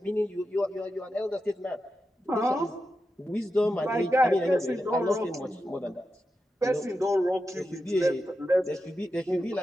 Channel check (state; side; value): normal; both; correlation 0.89